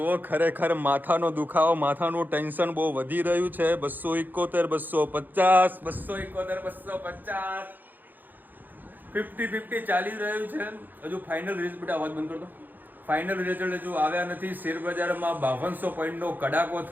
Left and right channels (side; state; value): left; late; 0.087 ms